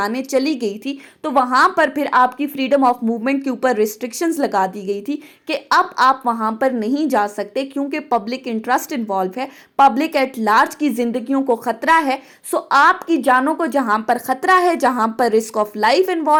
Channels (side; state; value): both; identical; correlation 1.00